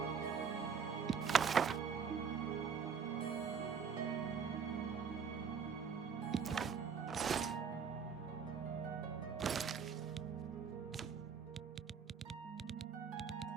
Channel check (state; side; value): quieter; left; 6.3 dB